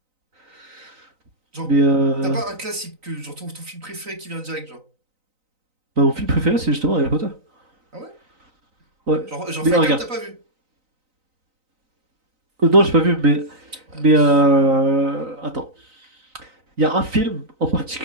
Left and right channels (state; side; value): late; left; 3.9 ms